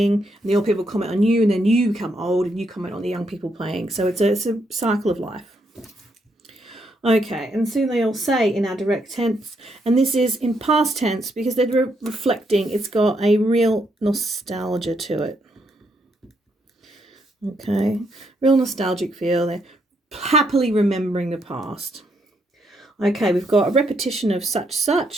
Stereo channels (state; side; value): normal; both; correlation 0.76